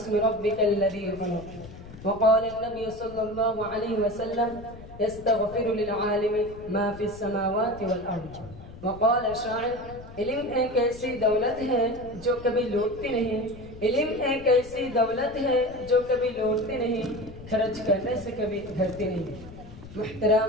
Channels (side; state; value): left; noise; rumble, 16 dB below the sound